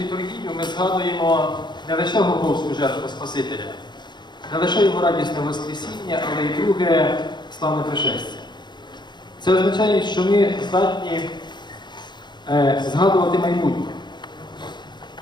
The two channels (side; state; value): right; late; 0.21 ms